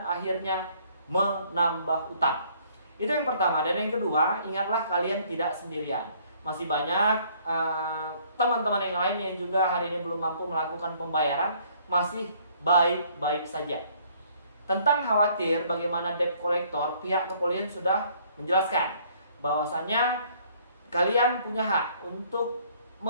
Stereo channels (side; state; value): both; inverted; correlation -0.61